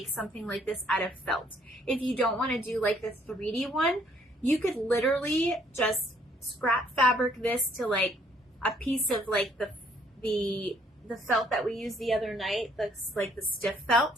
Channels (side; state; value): both; normal; correlation 0.64